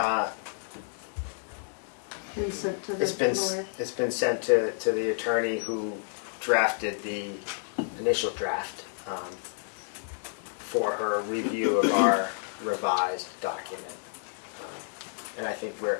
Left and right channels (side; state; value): right; silent; digital silence